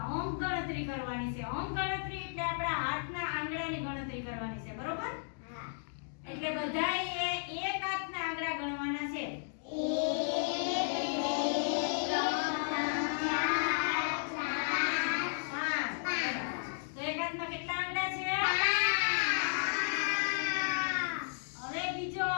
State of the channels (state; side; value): silent; right; digital silence